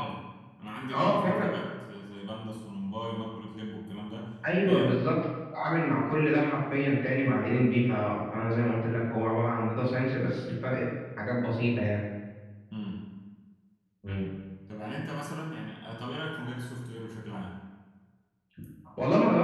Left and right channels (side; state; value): both; identical; correlation 1.00